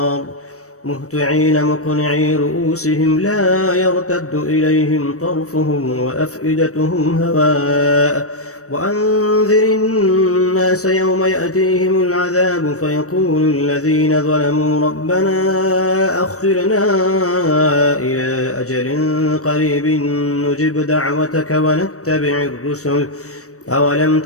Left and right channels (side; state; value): right; late; 0.65 ms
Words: مهطعين مقنعي رؤوسهم لا يرتد إليهم طرفهم وأفئدتهم هواء وأنذر الناس يوم يأتيهم العذاب فيقول الذين ظلموا ربنا أخرنا إلى أجل قريب نجب دعوتك ونتبع الرسل أولم